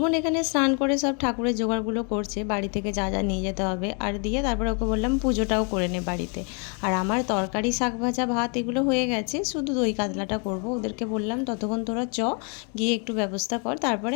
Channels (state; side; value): quieter; right; 37.5 dB